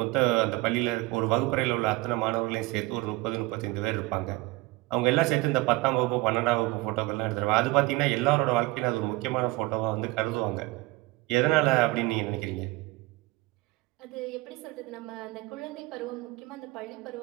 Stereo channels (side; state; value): left; quieter; 21.3 dB